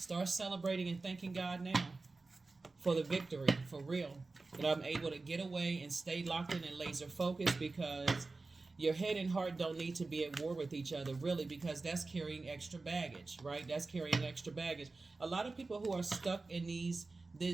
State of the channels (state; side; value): quieter; left; 3.6 dB